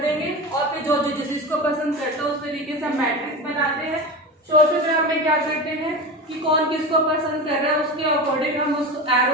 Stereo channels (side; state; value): both; normal; correlation 0.26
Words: देंगे और फिर जो जिसको पसंद करता है उस तरीके से हम मैट्रिक्स बनाते हैं। सोशोग्राम में क्या करते हैं कि कौन किसको पसंद कर रहा है उसके अकॉर्डिंग हम उसको